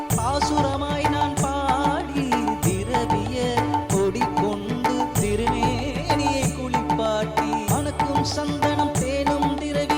பாசுரமாய் நான் பாடி திரவிய கொடி கொண்டு திருமேனியை குளிப்பாட்டி மணக்கும் சந்தனம் தேனும்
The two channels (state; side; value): identical; both; correlation 1.00